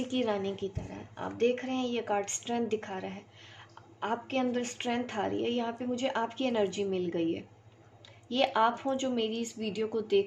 की रानी की तरह। आप देख रहे हैं ये कार्ड स्ट्रेंथ दिखा रहा है, आपके अंदर स्ट्रेंथ आ रही है। यहाँ पे मुझे आपकी एनर्जी मिल गई है। ये आप हो जो मेरी इस वीडियो को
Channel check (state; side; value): identical; both; correlation 1.00